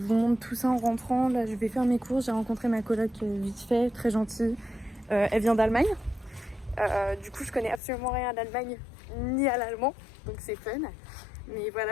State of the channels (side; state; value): right; drops out; at 7.8 s